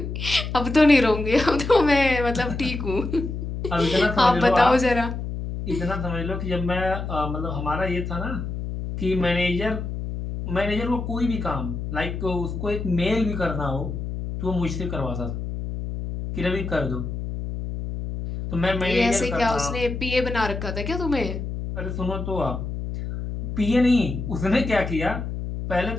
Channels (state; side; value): noise; left; hum, 5 dB below the sound